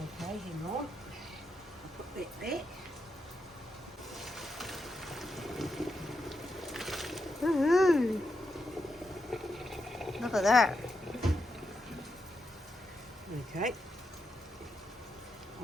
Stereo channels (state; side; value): normal; both; correlation 0.85